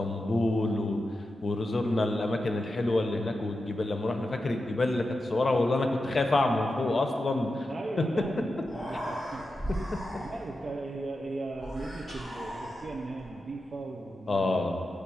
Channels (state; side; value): normal; both; correlation 0.90